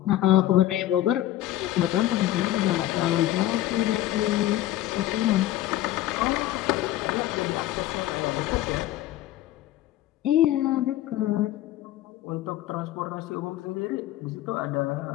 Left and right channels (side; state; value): right; quieter; 14.1 dB